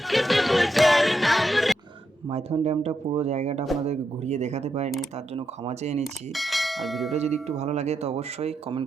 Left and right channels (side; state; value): both; normal; correlation 0.83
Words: দেব যার নাম রে। মাইথন ড্যামটা পুরো জায়গাটা আপনাদেরকে ঘুরিয়ে দেখাতে পারিনি, তার জন্য ক্ষমা চেয়ে নিচ্ছি। আর ভিডিওটা যদি একটু ভালো লাগে তো অবশ্যই কমেন্ট